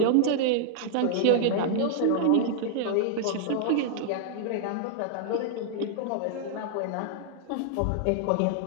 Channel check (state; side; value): different; both; correlation -0.01